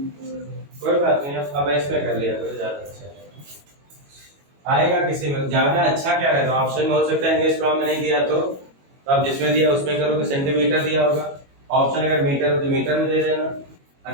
कोई बात नहीं, अब इसमें कर लिया करो, ज्यादा अच्छा है। आएगा किसी में ज्यादा अच्छा क्या रहेगा, ऑप्शन में हो सकता है एंगस्ट्रॉम में नहीं दिया तो आप जिसमें दिया उसमें करोगे, सेंटीमीटर दिया होगा, ऑप्शन अगर मीटर हो तो मीटर में दे देना,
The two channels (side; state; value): left; late; 22 ms